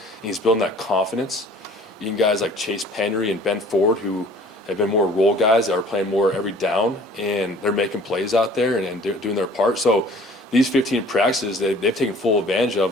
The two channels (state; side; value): normal; both; correlation 0.51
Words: and he's building that confidence. Even guys like Chase Penry and Ben Ford, who have been more role guys that are playing more every down, and they're making plays out there and doing their part. So these 15 practices, they've taken full advantage of